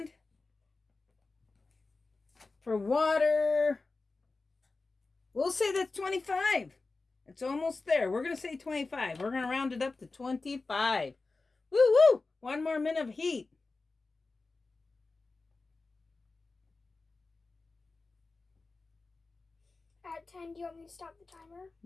For water, we'll say that's 25. It's almost there. We're going to say 25. We're going to round it up to 25. Woo woo! 1 more minute of heat. At 10, do you want me to stop the timer?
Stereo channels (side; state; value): right; quieter; 3.7 dB